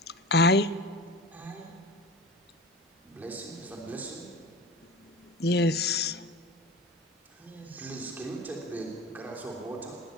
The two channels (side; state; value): both; normal; correlation 0.33